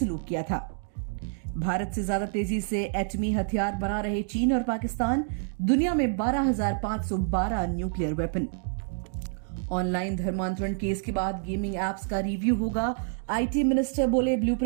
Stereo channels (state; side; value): silent; left; digital silence